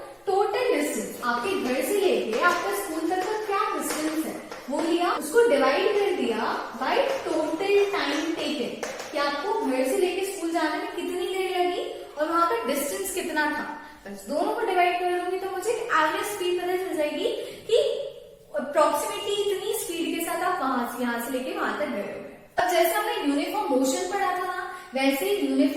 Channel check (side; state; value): both; identical; correlation 1.00